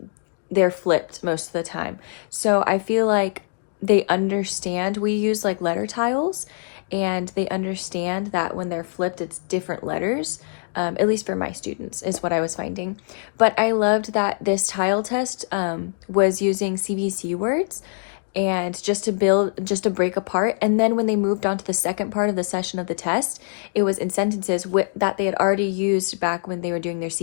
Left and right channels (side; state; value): right; silent; digital silence